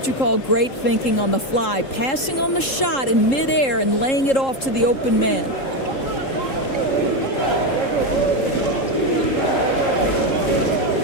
you call great thinking on the fly. Passing on the shot in midair and laying it off to the open man.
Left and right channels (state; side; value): late; right; 3.7 ms